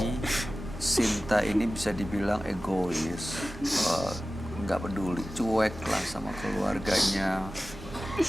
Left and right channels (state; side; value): normal; both; correlation 0.96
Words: Sinta ini bisa dibilang egois, nggak peduli, cuek lah sama keluarganya,